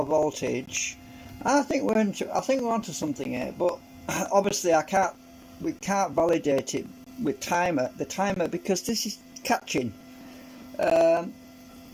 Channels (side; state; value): both; identical; correlation 1.00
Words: voltage. And I think we're onto something here. But obviously, we can't validate it with the timer, because this is catching. The